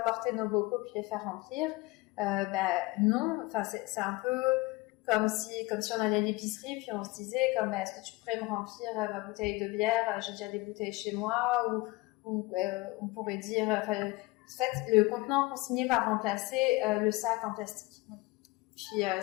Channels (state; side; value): quieter; right; 22.0 dB